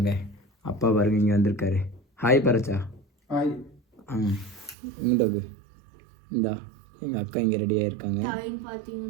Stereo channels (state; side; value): drops out; left; at 4.8 s